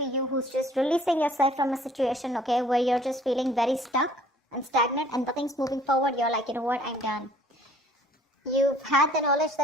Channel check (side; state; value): both; normal; correlation 0.56